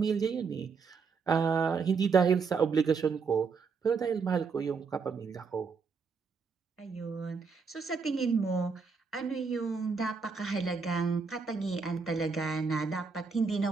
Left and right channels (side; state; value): left; quieter; 5.2 dB